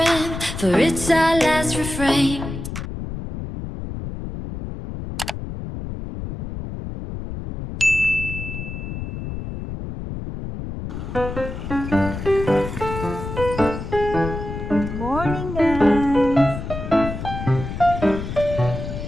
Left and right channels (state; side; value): noise; left; rumble, 7 dB below the sound